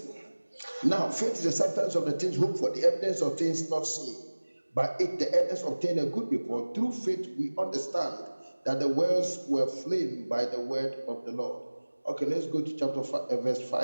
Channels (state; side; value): inverted; both; correlation -1.00